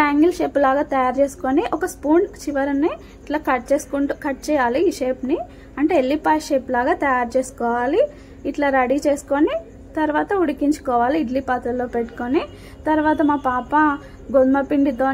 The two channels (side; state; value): both; identical; correlation 1.00